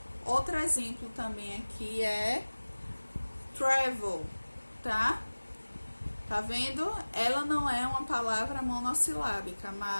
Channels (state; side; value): inverted; both; correlation -1.00